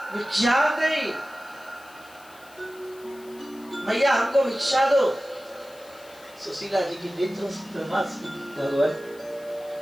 भिक्षा दे, मैया हमको भिक्षा दो। सुशीला जी की नेत्रों से भगवान,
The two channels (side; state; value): left; noise; hiss, 24 dB below the sound